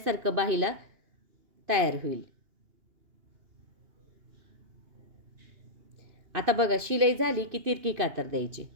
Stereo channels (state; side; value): late; left; 2.8 ms